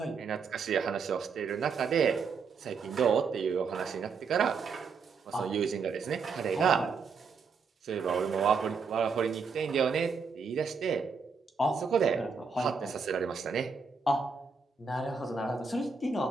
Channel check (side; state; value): left; quieter; 5.2 dB